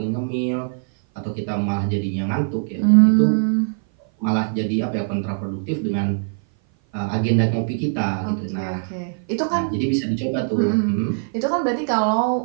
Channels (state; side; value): silent; left; 57 dB below the other